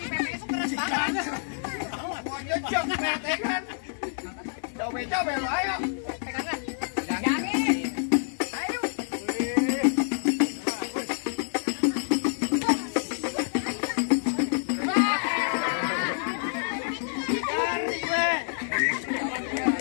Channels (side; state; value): right; silent; digital silence